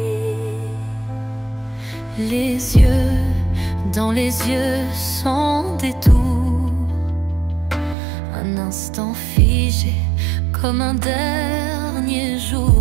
Les yeux dans les yeux sans détour, un instant figé comme un dernier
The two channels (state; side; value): drops out; left; at 8.0 s